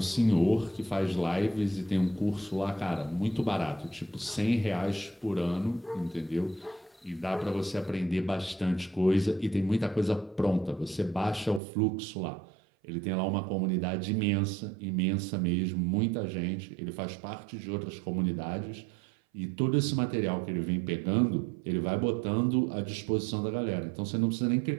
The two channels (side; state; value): left; drops out; at 11.6 s